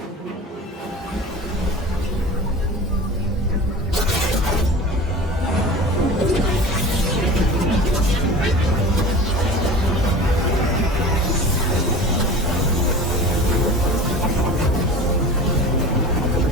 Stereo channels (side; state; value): both; normal; correlation 0.36